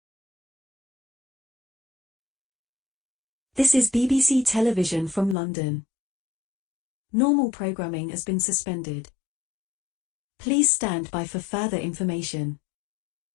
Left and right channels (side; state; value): right; drops out; at 5.4 s